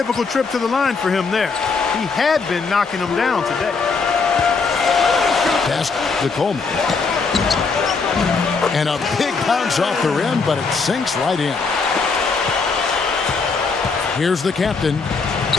trip to the line for him there. He had been knocking them down today. Pass to Coleman. And a big bounce off the rim, but it sinks right in. Here's the captain.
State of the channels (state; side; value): quieter; right; 4.7 dB